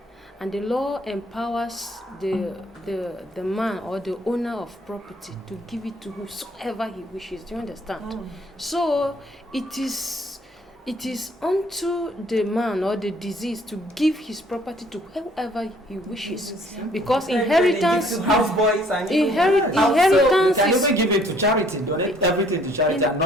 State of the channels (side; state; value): both; normal; correlation 0.60